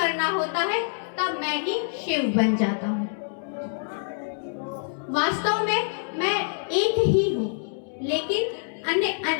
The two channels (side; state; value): right; silent; digital silence